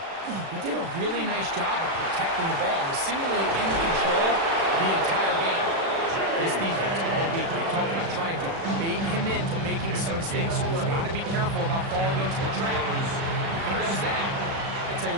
he did a really nice job of protecting the ball and was seemingly in control the entire game. This defense all week, they talked about trying to bait him into making some mistakes, so he's got to be careful about falling into the trap. If he does that, I tell you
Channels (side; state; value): left; late; 36 ms